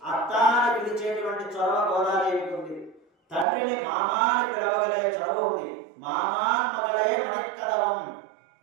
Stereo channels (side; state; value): left; drops out; at 3.5 s